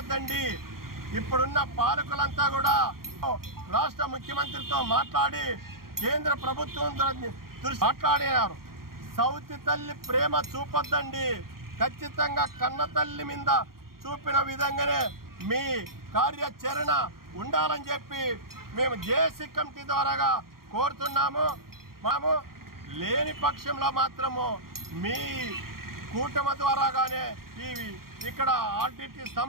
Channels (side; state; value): left; late; 0.93 ms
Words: ఇప్పుడున్న పాలకులంతా కూడా రాష్ట్ర ముఖ్యమంత్రితో మాట్లాడి కేంద్ర ప్రభుత్వం దృష్టి మాట్లాడినారు. సౌతి తల్లి ప్రేమ చూపొద్దండి, ఖచ్చితంగా కన్న తల్లి మీద చూపిన విధంగానే మీ కార్యాచరణ ఉండాలని చెప్పి మేము జేఏసీ కమిటీ ద్వారాగా కోరుతున్నాము. మేము లేని పక్షంలో మాత్రము మీ కూటమి ద్వారాగానే ఇక్కడ ఆర్డిటి